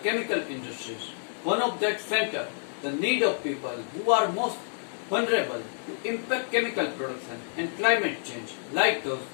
industries. One of that center the need of people who are most vulnerable to impact chemical production and climate change, like those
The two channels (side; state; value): right; silent; digital silence